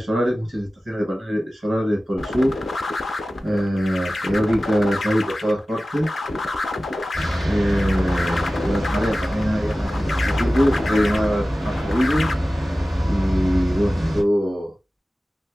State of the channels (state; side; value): normal; both; correlation 0.96